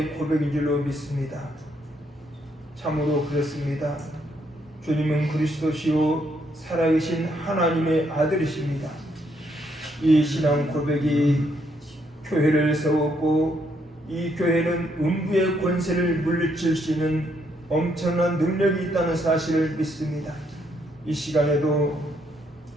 고백인 줄로 믿습니다. 참으로 그렇습니다. 주님은 그리스도시요 살아계신 하나님의 아들이십니다. 이 신앙 고백이 교회를 세웠고 이 교회는 음부의 권세를 물리칠 수 있는 엄청난 능력이 있다는 사실을 믿습니다. 이 시간에도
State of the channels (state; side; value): normal; both; correlation 0.73